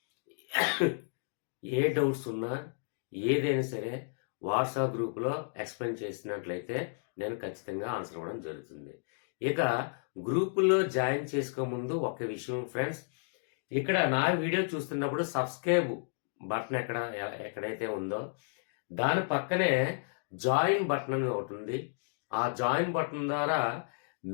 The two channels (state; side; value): silent; right; digital silence